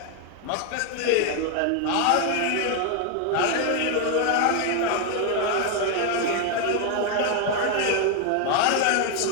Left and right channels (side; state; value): both; different; correlation 0.01